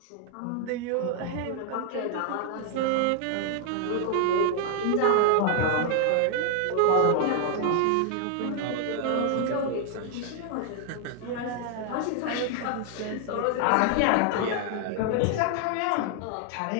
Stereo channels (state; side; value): different; both; correlation 0.00